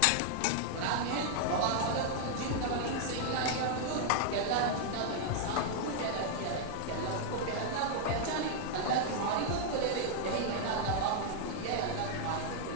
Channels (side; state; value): both; different; correlation -0.01